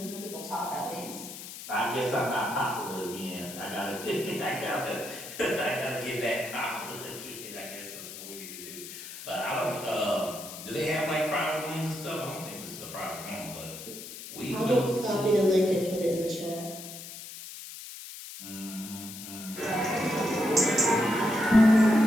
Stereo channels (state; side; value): noise; left; hiss, 12 dB below the sound